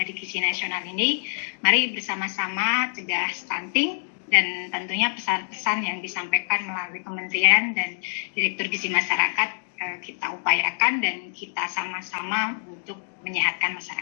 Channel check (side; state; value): right; silent; digital silence